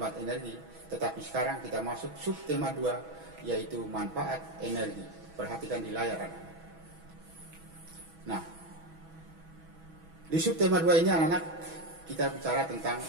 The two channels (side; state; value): left; late; 6.1 ms